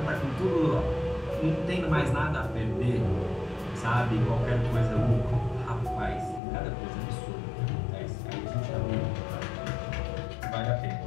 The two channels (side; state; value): right; drops out; at 6.4 s